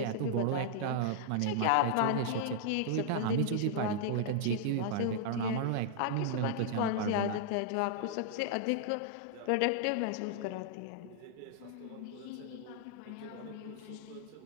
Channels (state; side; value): different; both; correlation -0.01